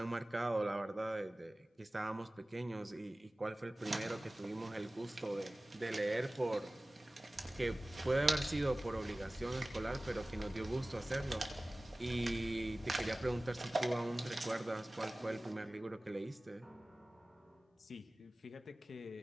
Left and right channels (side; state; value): both; normal; correlation 0.98